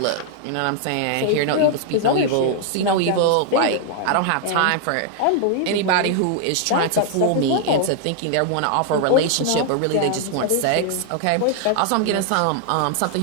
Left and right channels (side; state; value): both; different; correlation 0.00